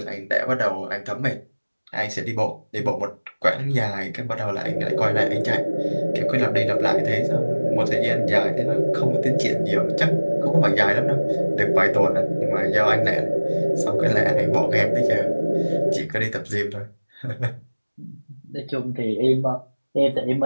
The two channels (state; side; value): inverted; both; correlation -1.00